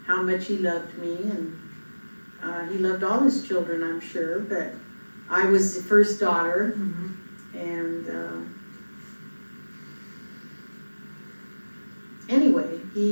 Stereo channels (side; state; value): both; inverted; correlation -1.00